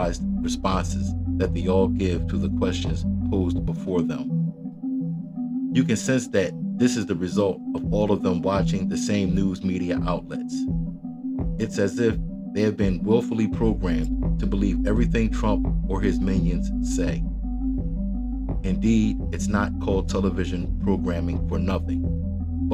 responses that they all give to the questions posed before them. You can sense that this is the result of all of them watching the same news media outlets. It's as if they have been willfully programmed to believe everything Trump or his minions say. Indeed, it's not called television programming for nothing,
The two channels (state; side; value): identical; both; correlation 1.00